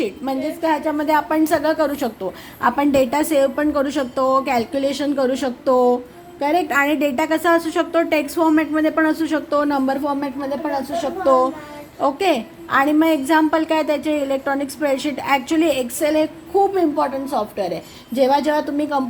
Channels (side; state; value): both; identical; correlation 1.00